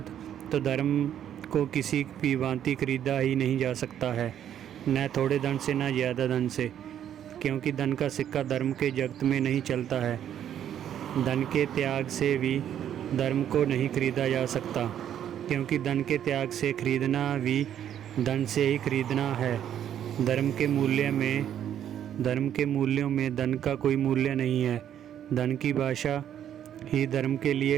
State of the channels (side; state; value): left; quieter; 10.1 dB